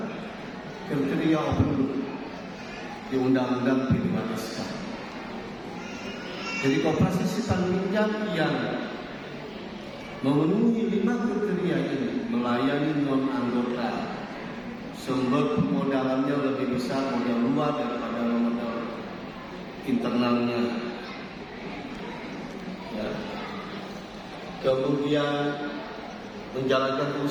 kriteria open loop di Undang-Undang P2SK. Jadi koperasi simpan pinjam yang memenuhi 5 kriteria ini melayani non anggota, sumber pemodalannya lebih besar modal luar daripada modal internalnya, ya. Kemudian menjalankan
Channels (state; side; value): identical; both; correlation 1.00